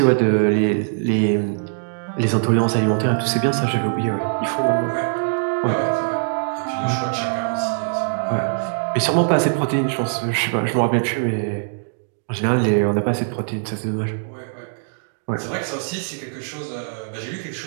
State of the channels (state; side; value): silent; left; digital silence